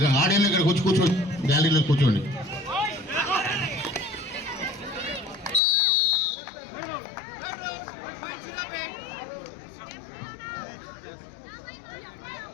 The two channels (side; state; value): right; drops out; at 5.6 s